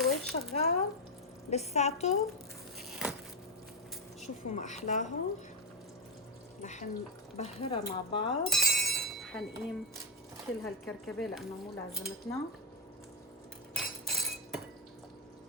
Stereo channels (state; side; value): normal; both; correlation 0.04